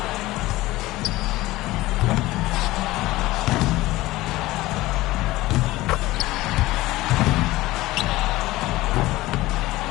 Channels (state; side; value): quieter; right; 18.2 dB